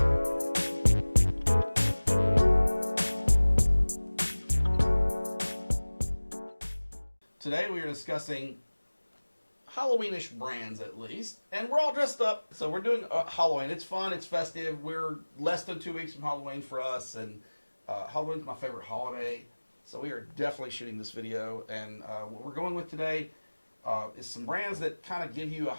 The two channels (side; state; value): both; inverted; correlation -1.00